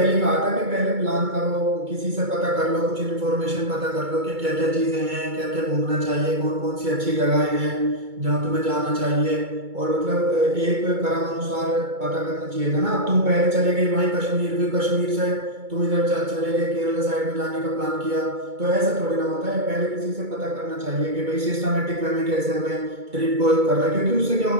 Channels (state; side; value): late; left; 2.3 ms